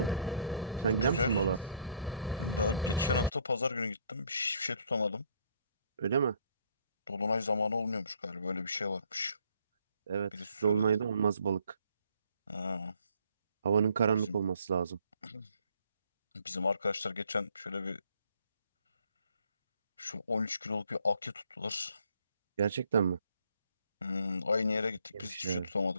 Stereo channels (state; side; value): inverted; both; correlation -0.63